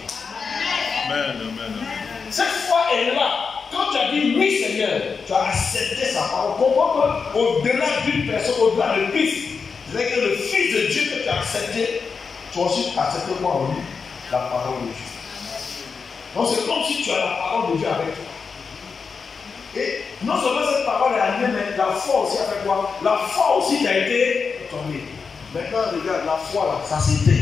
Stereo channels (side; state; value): right; quieter; 5.3 dB